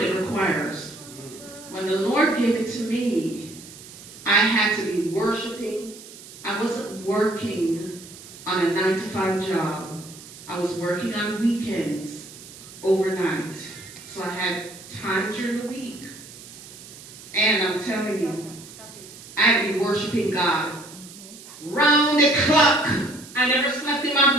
it requires. When the Lord gave it to me, I had to be worshiping. I wasn't working on a 9-to-5 job. I was working on weekends, overnight. So I had time during the week. And I'm telling you, I'd be worshiping God round the clock. I never slept in my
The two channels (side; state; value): right; noise; hiss, 17 dB below the sound